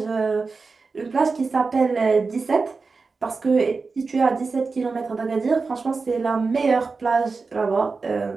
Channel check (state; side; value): quieter; left; 4.3 dB